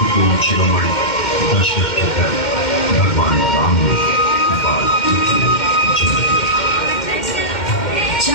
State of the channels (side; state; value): right; late; 2.1 ms